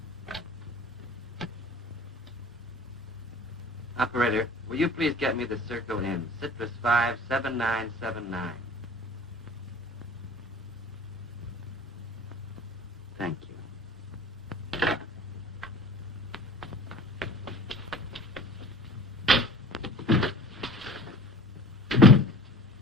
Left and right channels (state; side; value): normal; both; correlation 0.43